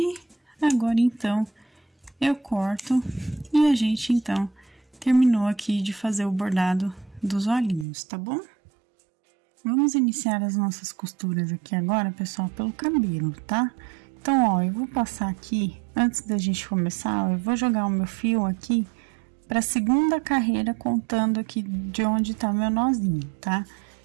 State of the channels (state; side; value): drops out; left; at 7.9 s